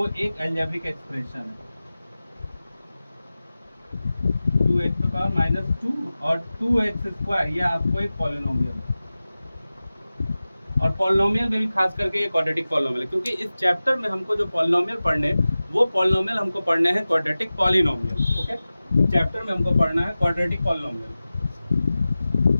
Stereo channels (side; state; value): both; inverted; correlation -0.96